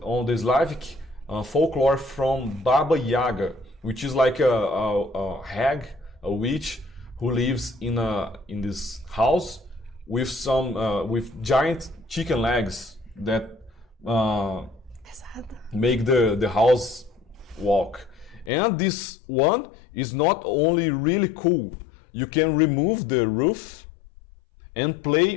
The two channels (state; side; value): drops out; right; at 18.5 s